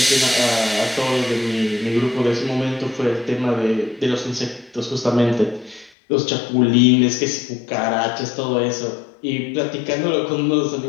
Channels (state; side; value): drops out; right; at 5.9 s